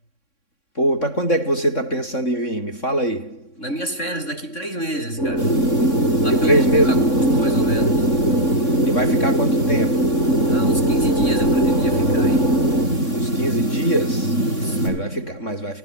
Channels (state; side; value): late; right; 3.6 ms